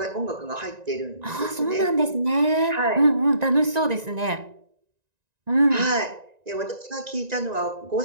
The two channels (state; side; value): late; left; 1.9 ms